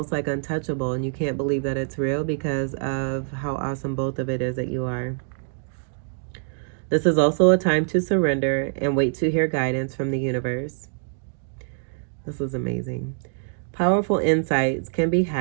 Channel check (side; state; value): left; silent; 62 dB below the other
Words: like untouchable and you can't believe that it's real because of how awesome both of it is that you are. This is also a time to surrender and wait to hear guidance from the universe. This is amazing. Powerful insights can be